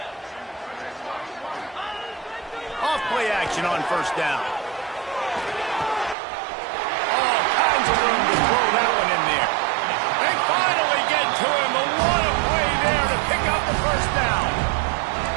Off play action on 1st down. All kinds of room to throw that one in there. They finally get to him. But what a play there to pick up the 1st down.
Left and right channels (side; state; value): left; drops out; at 6.2 s